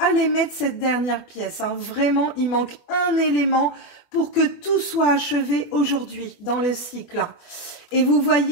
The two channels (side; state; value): right; late; 24 ms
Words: mettre cette dernière pièce, hein. Vraiment, il manque un élément pour que tout soit achevé aujourd'hui dans le cycle. Et vous